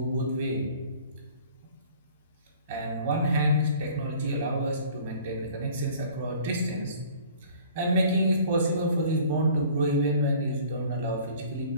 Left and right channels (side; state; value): both; inverted; correlation -0.50